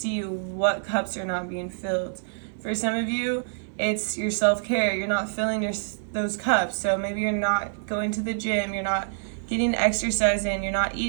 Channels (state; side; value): silent; left; 61 dB below the other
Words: what cups are not being filled. For some of you, it's your self-care. You're not filling those cups. So maybe you're not going to the gym. You're not getting exercise in. You're not